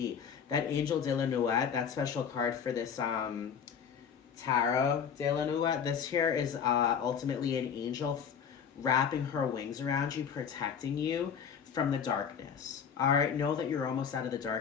That Angel de la Nuit, that special card for this Tarot de la Nuit, this here is ultimately an angel wrapping her wings around you, protecting you from the darkness. All right, know that you're almost out of the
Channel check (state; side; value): quieter; right; 7.3 dB